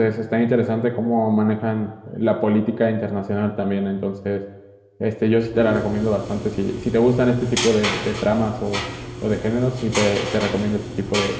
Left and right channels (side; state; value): both; identical; correlation 1.00